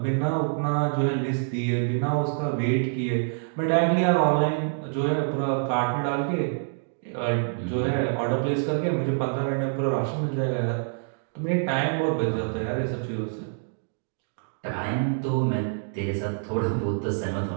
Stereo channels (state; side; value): silent; left; digital silence